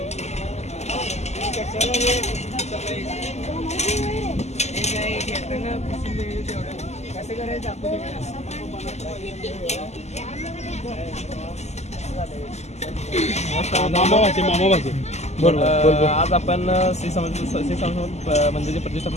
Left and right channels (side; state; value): right; late; 0.33 ms